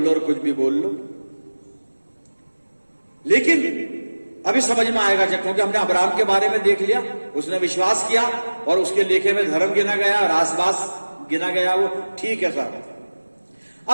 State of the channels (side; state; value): both; inverted; correlation -1.00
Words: और कुछ भी बोल लो, लेकिन अभी समझ में आएगा जब, क्योंकि हमने अब्राहम के बारे में देख लिया, उसने विश्वास किया और उसके लेखे में धर्म गिना गया और आसपास गिना गया, वो ठीक है साहब।